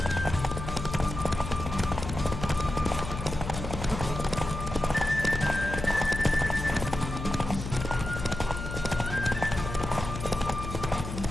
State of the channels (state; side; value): noise; left; hum, 7 dB below the sound